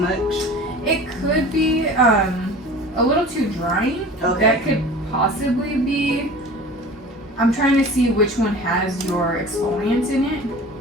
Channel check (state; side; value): normal; both; correlation 0.40